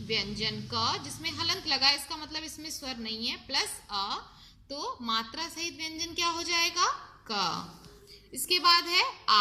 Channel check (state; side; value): identical; both; correlation 1.00